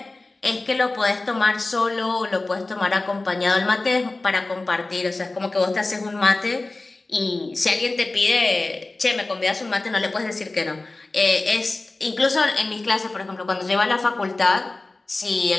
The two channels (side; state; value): right; quieter; 3.1 dB